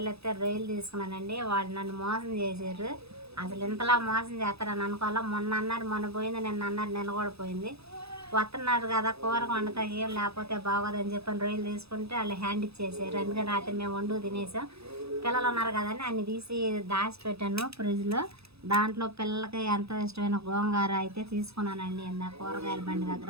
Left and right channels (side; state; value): left; late; 0.78 ms